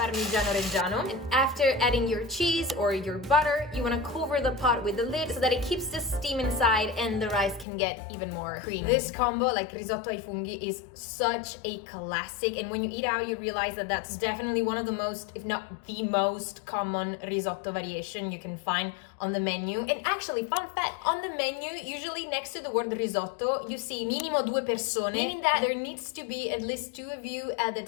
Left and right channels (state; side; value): drops out; right; at 7.7 s